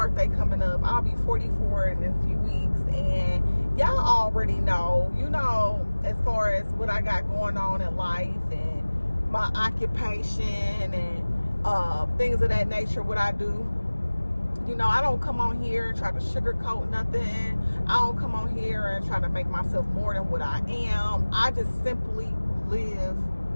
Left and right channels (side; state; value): both; inverted; correlation -1.00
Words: coming up. I'll be 44 in a few weeks, and y'all already know, you know, as far as what I got going on in life and my occupation and things of that nature, what I do. You know, I don't come on here and try to sugarcoat nothing. I don't come on here and try to make myself more than what I am. I just simply live